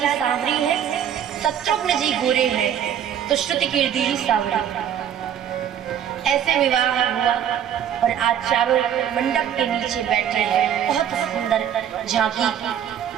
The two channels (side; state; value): left; quieter; 9.5 dB